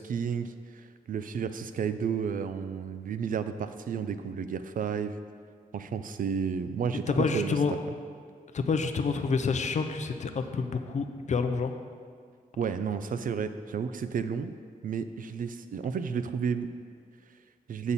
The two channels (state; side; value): normal; both; correlation 0.59